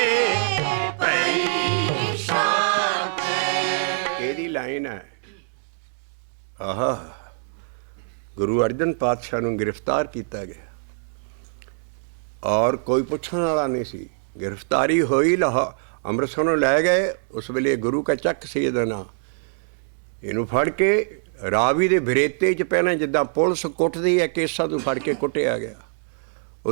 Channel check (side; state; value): left; silent; digital silence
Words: ਪਈ ਸ਼ਾਂਤੇ। ਇਹਦੀ ਲਾਈਨ ਹੈ। ਆਹਾ, ਗੁਰੂ ਅਰਜਨ ਪਾਤਸ਼ਾਹ ਨੂੰ ਗ੍ਰਿਫਤਾਰ ਕੀਤਾ ਗਿਆ ਔਰ ਕੋਈ ਪੁੱਛਣ ਵਾਲਾ ਨਹੀਂ ਸੀ। ਗ੍ਰਿਫਤਾਰੀ ਹੋਈ, ਅੰਮ੍ਰਿਤਸਰ ਨੂੰ ਲੈ ਗਏ। ਉਸ ਵੇਲੇ ਗੁਰੂ ਕਾ ਚੱਕ ਸੀ ਇਹਦਾ ਨਾਂ। ਇਹਨੂੰ ਫੜ ਕੇ ਰਾਵੀ ਦੇ ਬਰੇਤੇ 'ਚ ਪਹਿਲਾਂ ਜਿੱਦਾਂ ਪੁਲਿਸ ਕੁੱਟਦੀ ਹੈ ਕੇਸਾਂ ਤੋਂ ਫੜ ਕੇ ਕੁੱਟਿਆ ਗਿਆ।